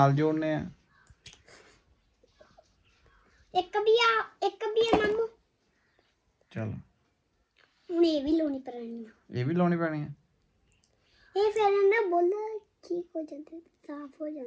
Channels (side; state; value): both; identical; correlation 1.00